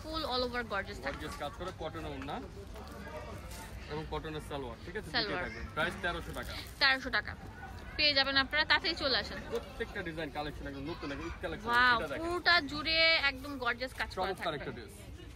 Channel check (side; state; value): both; identical; correlation 1.00